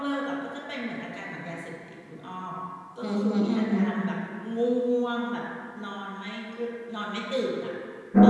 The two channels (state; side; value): identical; both; correlation 1.00